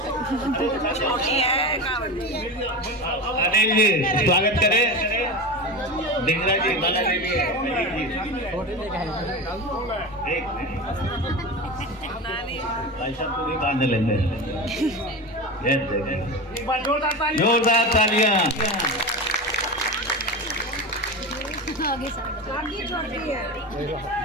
अनिल जी स्वागत करें। डिंगरा जी वाला ले लिए। भाई साहब को भी बांध लेंगे। जोरदार तालियां।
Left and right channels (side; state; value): both; normal; correlation 0.25